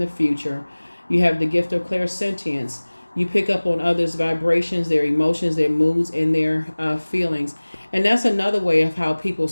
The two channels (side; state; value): both; inverted; correlation -1.00